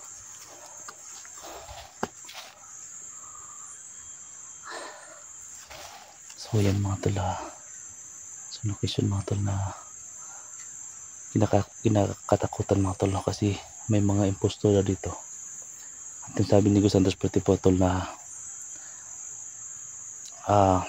So yan mga tol, so location mga tol na kinakatakutan mga tol kasi may mga impostor dito. At yung sabi ni Santos Puti po tol na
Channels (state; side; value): identical; both; correlation 1.00